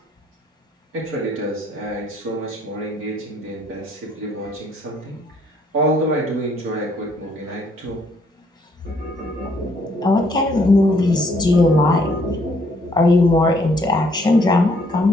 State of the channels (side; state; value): both; normal; correlation 0.66